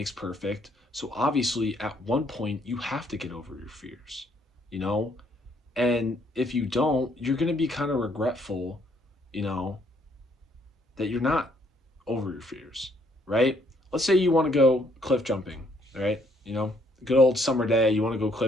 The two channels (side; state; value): both; normal; correlation 0.67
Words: perfect. So obviously, at one point, you have to get over your fears, you know? And if you don't, you're going to be kind of regretful, you know, that you're not over your fears, right? Let's say you want to go cliff jumping, right? Good old summer day, you want to go